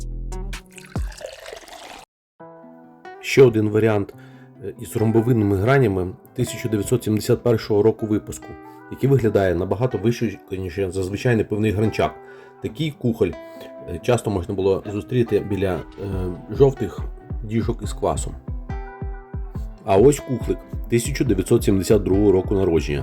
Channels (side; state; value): both; identical; correlation 1.00